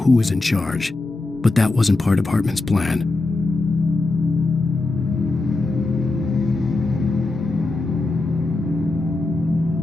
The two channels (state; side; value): quieter; right; 3.2 dB